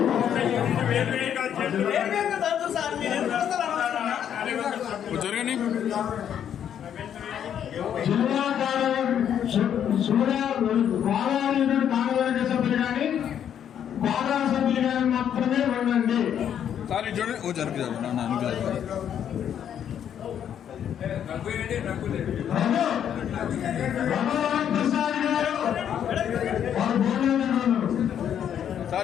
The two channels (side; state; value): right; quieter; 9.3 dB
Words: జరగండి గోదావరి కార్యవర్గ సభ్యులు కానీ గోదా సభ్యులు కానీ మాత్రమే ఉండండి. సార్ ఇటు చూడండి. ఓ జరుగు జరుగు ప్రసాద్ గారు